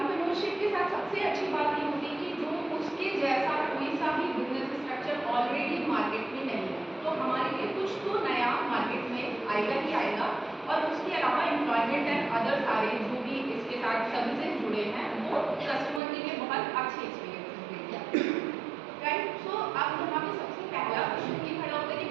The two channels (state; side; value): drops out; left; at 16.0 s